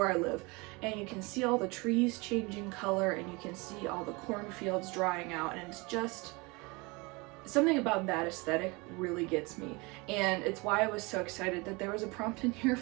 I live, and you can see all the trees changing color, and you can see all the cornfields drying out, and it's just something about that aesthetic really gets me. And it's why I was so excited that there was a prompt in here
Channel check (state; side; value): quieter; left; 26.4 dB